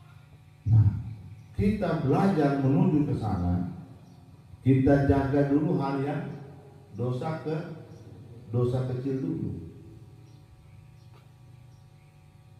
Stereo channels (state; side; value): identical; both; correlation 1.00